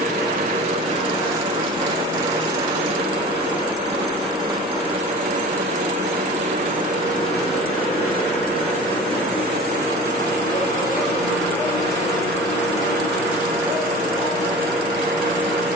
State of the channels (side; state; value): both; normal; correlation 0.39